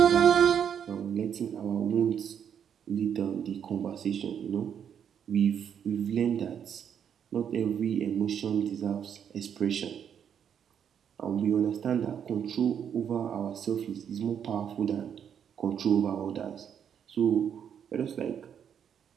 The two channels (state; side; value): quieter; left; 8.3 dB